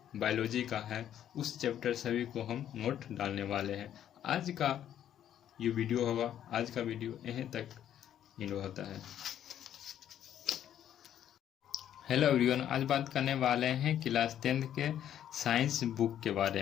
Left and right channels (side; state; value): right; quieter; 10.6 dB